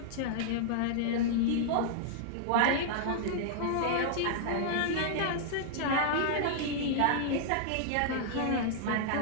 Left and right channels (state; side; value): different; both; correlation -0.01